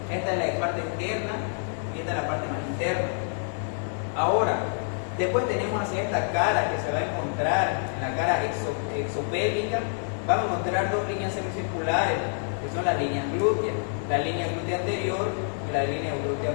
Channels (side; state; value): right; silent; 60 dB below the other